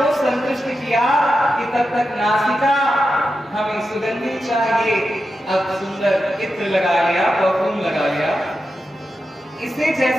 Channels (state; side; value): normal; both; correlation 0.89